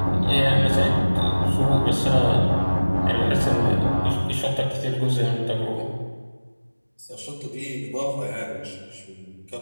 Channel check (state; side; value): inverted; both; correlation -1.00